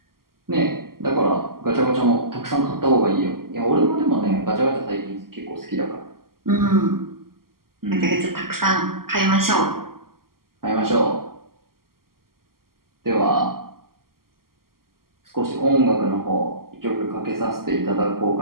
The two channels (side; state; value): left; late; 0.92 ms